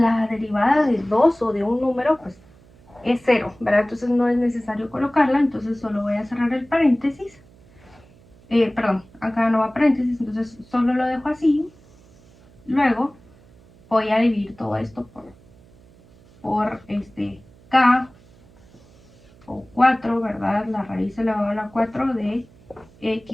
derivada de 2 o de un número, pues es 0, ¿verdad? Entonces no es necesario colocarla, entonces solo voy a cerrar el paréntesis. Perdón, acá no va paréntesis, entonces solo lo dejo así. Luego voy a dividir todo esto por k o 4, ¿verdad? La raíz elevada a la 4 de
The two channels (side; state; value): right; noise; hum, 27 dB below the sound